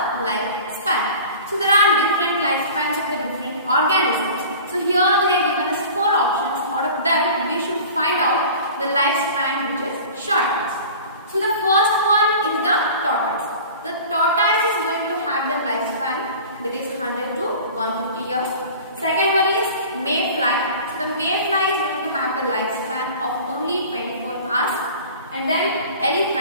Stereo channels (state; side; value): inverted; both; correlation -0.40